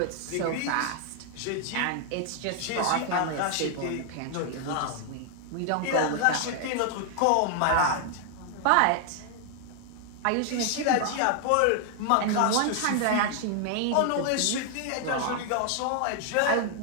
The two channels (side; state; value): both; different; correlation 0.00